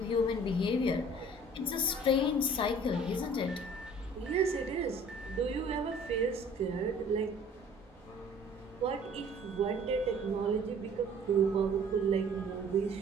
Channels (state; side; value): normal; both; correlation 0.51